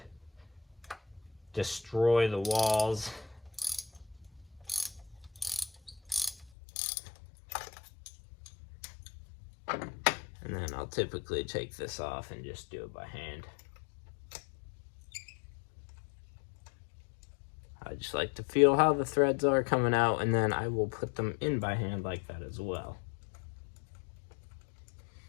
destroy the walls. And then I'll typically take this off and just do it by hand. I just like to feel how the threads are coming out, and then I will put them in by hand like that as well.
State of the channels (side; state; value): right; drops out; at 6.5 s